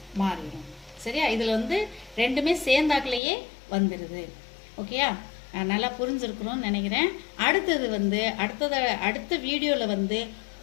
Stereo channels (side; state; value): right; drops out; at 3.2 s